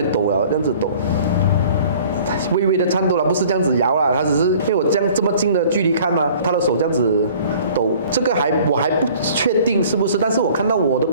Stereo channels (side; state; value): both; inverted; correlation -0.50